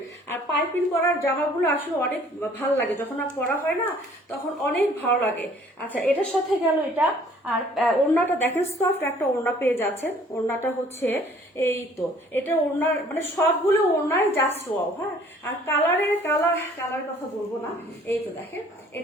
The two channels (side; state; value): both; normal; correlation 0.56